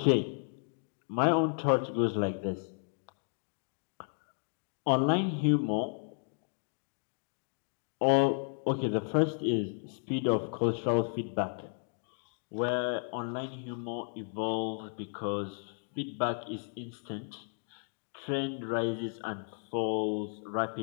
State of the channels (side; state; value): right; silent; 55 dB below the other